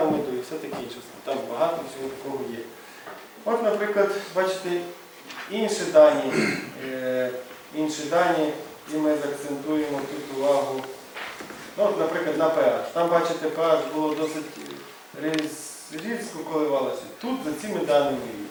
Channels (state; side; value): identical; both; correlation 1.00